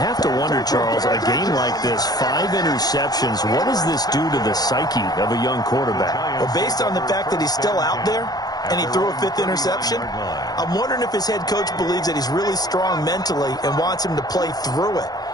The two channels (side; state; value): right; late; 0.19 ms